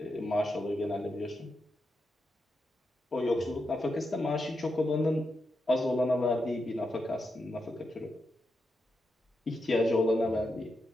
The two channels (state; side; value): normal; both; correlation 0.86